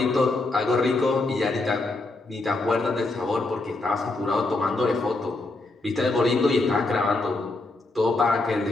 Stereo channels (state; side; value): quieter; right; 3.1 dB